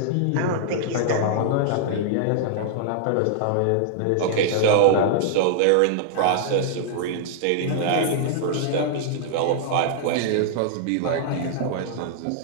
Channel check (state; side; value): different; both; correlation -0.01